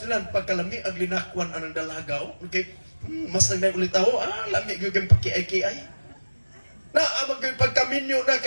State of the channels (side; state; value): both; inverted; correlation -1.00